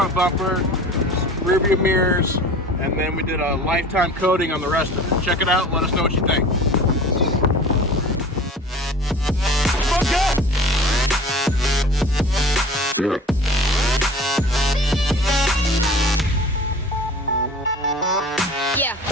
bumper, rear view mirrors, and then we did a lifetime coating on the rest of it. Check it out, let us know what you think. Yeah.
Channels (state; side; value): normal; both; correlation 0.42